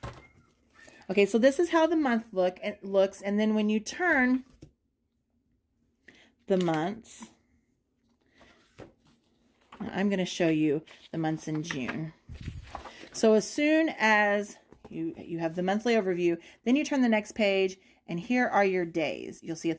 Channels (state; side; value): identical; both; correlation 1.00